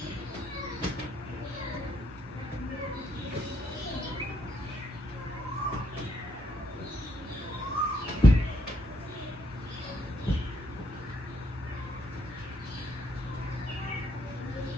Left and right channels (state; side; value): normal; both; correlation 0.74